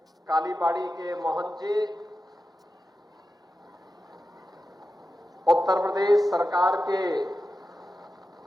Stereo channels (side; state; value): both; normal; correlation 0.92